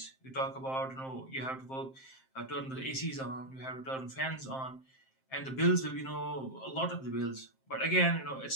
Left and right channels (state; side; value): late; right; 7.6 ms